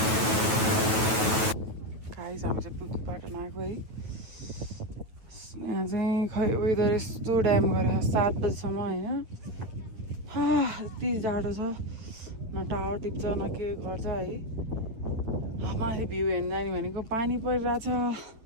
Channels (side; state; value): left; late; 9.3 ms